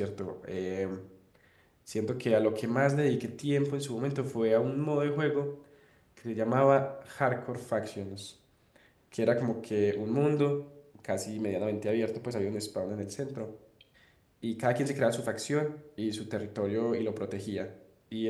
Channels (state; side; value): identical; both; correlation 1.00